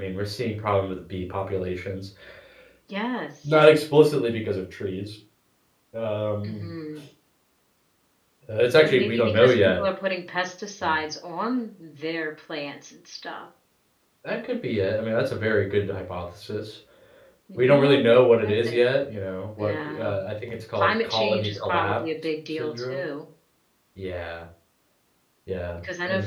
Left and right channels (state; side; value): identical; both; correlation 1.00